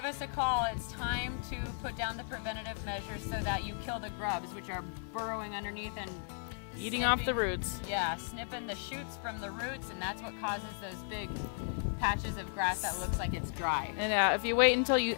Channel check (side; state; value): right; silent; 54 dB below the other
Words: us a call. It's time to put down the preventative measures so that you kill the grubs, which are burrowing underneath and Eating off the roots. Yeah, snipping the shoots from the roots, and that's what causes those big patches of grass that looks like it's dry. And if you wait until you